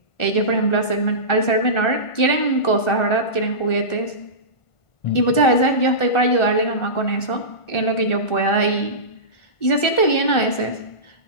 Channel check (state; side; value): late; right; 1.4 ms